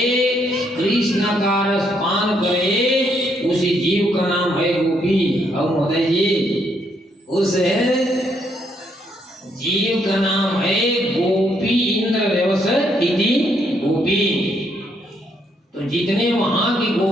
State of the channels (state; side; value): normal; both; correlation 0.73